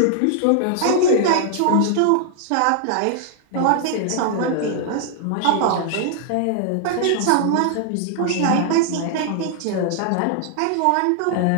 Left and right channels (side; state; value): both; different; correlation -0.01